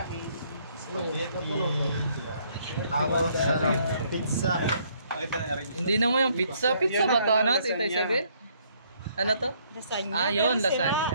spaghetti, tapos pizza. Hindi naman yung pizza. Pizza ba ito, ano, Tita Isabel? Ano to? Lasagna. Ah, yun,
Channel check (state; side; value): inverted; both; correlation -0.67